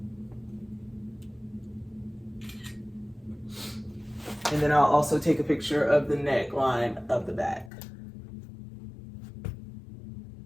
and then I'll also take a picture of the neckline of the back.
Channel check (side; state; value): right; drops out; at 7.7 s